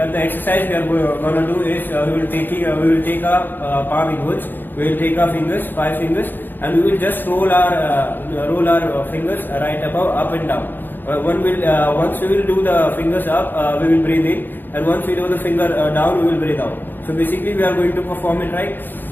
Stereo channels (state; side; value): late; right; 0.092 ms